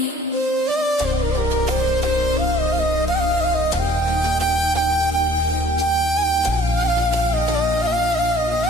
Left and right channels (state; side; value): normal; both; correlation 0.54